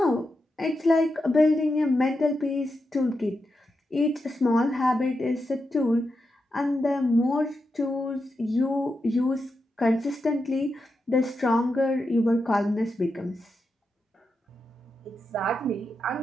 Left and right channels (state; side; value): normal; both; correlation 0.87